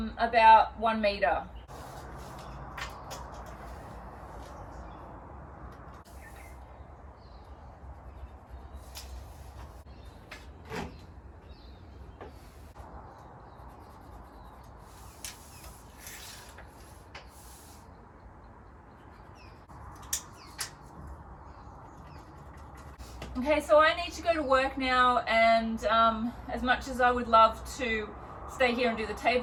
1 meter. Okay, so I need to go to work now, and as much as I would love to stay here and do the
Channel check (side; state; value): both; identical; correlation 1.00